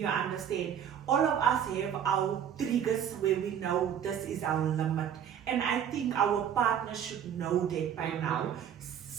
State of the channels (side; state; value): left; quieter; 9.0 dB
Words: understand? All of us have our triggers where we know this is our limit. And I think our partner should know that by now.